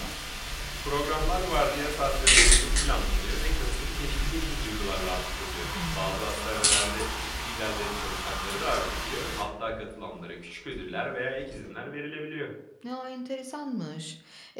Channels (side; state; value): both; identical; correlation 1.00